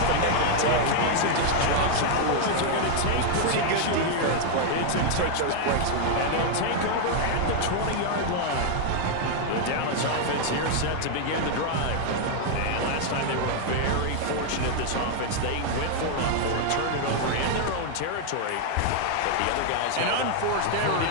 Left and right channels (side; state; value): both; different; correlation 0.00